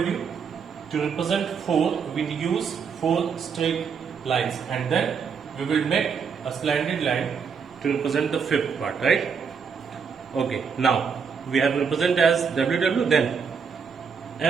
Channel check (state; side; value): quieter; left; 6.2 dB